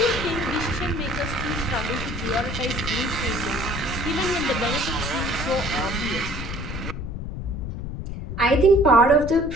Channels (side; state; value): left; noise; rumble, 6 dB below the sound